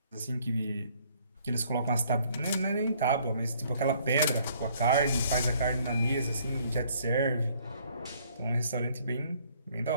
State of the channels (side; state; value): both; inverted; correlation -0.62